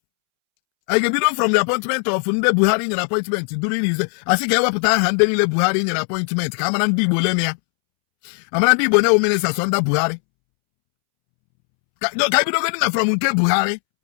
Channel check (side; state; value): right; silent; 67 dB below the other